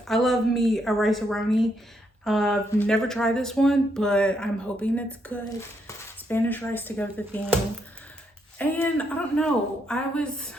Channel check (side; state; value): both; normal; correlation 0.77